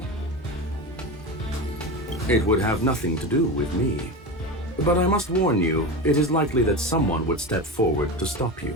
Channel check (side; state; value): both; normal; correlation 0.23